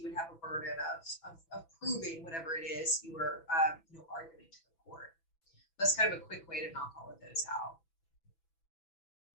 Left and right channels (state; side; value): late; right; 6.0 ms